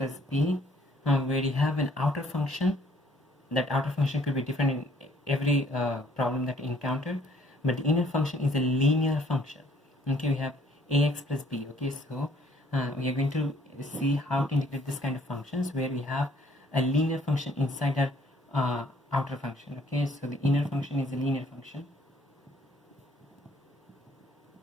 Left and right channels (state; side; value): normal; both; correlation 0.61